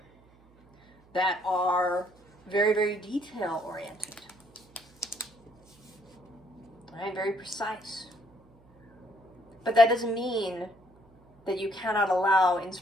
that are very, very detail oriented, right? Very precise. But that doesn't mean that you cannot allow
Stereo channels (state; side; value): noise; right; hum, 29 dB below the sound